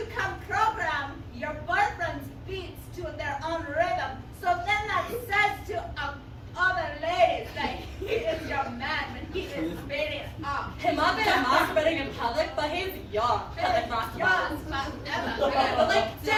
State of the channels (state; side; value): identical; both; correlation 1.00